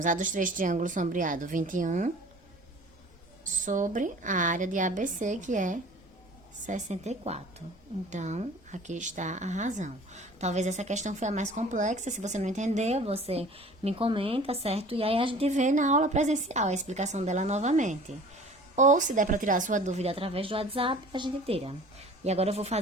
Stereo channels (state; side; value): normal; both; correlation 0.46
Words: a dos 3 triângulos sombreados, 21, sobre a área de ABC, que é 64. Então, aqui está a razão. Talvez essa questão foi a mais complexa. Se você não entendeu, você me comenta, certo? E aí a gente vê na aula presencial a explicação dela novamente. Ou, se der para tirar a sua dúvida através do WhatsApp, a gente tira. E agora eu vou